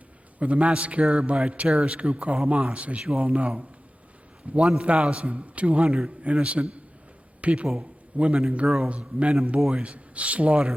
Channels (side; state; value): both; normal; correlation 0.96